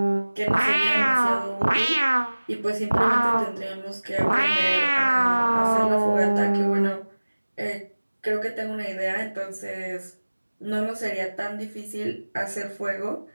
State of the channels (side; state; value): both; inverted; correlation -1.00